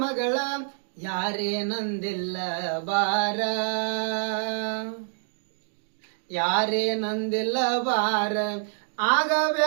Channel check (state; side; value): silent; left; digital silence